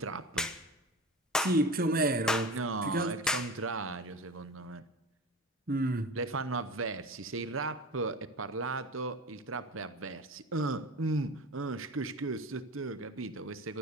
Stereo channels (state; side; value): normal; both; correlation 0.32